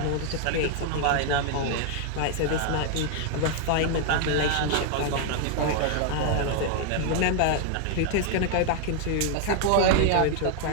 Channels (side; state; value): both; different; correlation 0.00